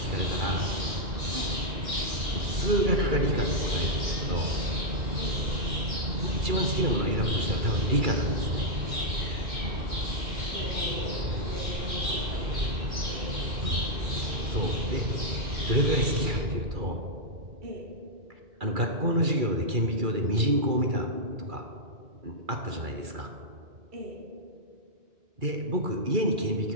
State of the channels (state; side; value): late; left; 2.3 ms